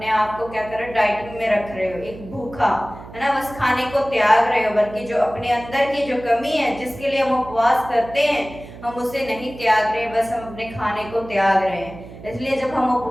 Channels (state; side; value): noise; right; hum, 15 dB below the sound